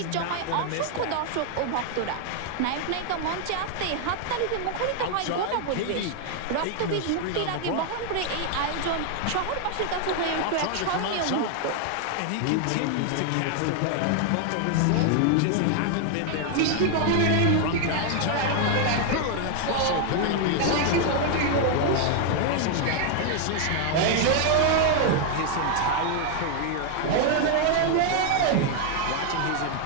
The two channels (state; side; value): different; both; correlation 0.00